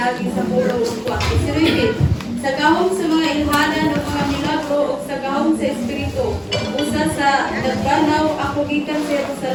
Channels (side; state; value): both; identical; correlation 1.00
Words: sa pulong ugwa. Isiribit, sa gahom sa mga ilhanan o mga milagro o sa gahom sa Espiritu, usa sa nagbanaw, ako gikan sa